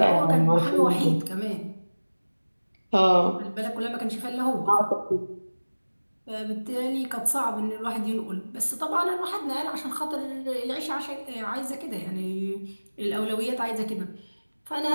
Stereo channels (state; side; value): inverted; both; correlation -1.00